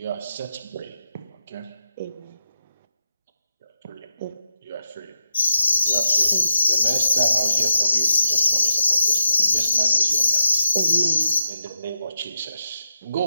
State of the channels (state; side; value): inverted; both; correlation -0.86